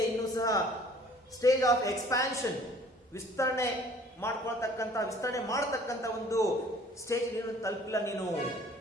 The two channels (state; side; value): normal; both; correlation 0.53